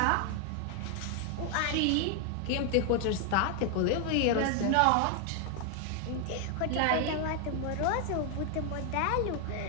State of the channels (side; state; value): both; different; correlation 0.00